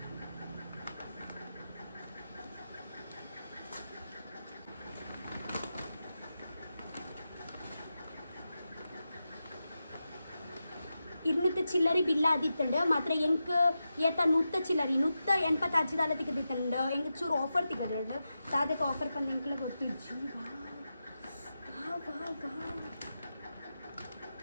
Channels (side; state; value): both; inverted; correlation -0.90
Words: ഇരുന്നൂറ്റി ചില്ലറി ബില്ലാദിട്ടുണ്ട് മാത്രം എനിക്ക് ഏത്ത 100 ചില്ലറി 185 ದಾಲ ತೆಗೆದಿട്ടുണ്ട് ಎಂಗೆ ಚೂರು ಆಫರ್ ತೆಗೆದಿട്ടുണ്ട് ಅದಕ್ಕೆ ಆಫರ್ ಬಂದು ಎಂಕಲ್ಲ ಗೊತ್ತು ಜೀ ವಾ